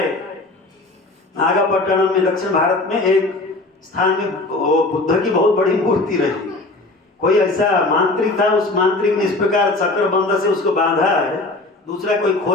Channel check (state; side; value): quieter; right; 3.0 dB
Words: नागापट्टनम में दक्षिण भारत में एक स्थान में बुद्ध की बहुत बड़ी मूर्ति रही। कोई ऐसा मांत्रिक था, उस मांत्रिक ने इस प्रकार चक्रबंध से उसको बांधा है, दूसरा कोई